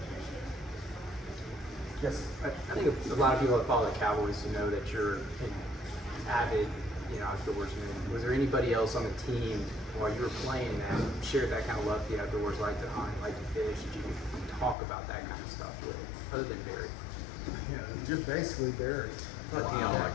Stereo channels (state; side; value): drops out; right; at 14.8 s